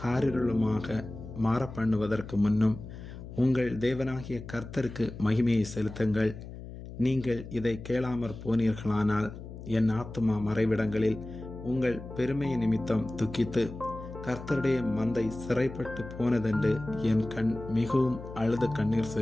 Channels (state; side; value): noise; left; hum, 12 dB below the sound